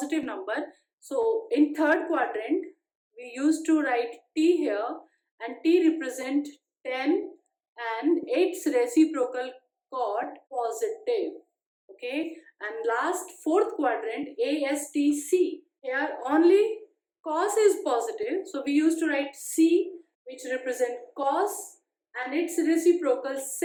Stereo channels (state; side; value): identical; both; correlation 1.00